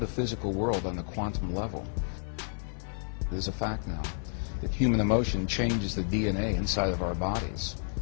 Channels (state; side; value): silent; right; 57 dB below the other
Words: physical world on the quantum level. It is a fact now that human emotion changes the DNA inside of our bodies